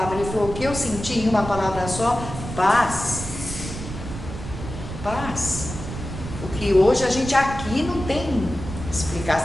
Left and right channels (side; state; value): right; noise; rumble, 9 dB below the sound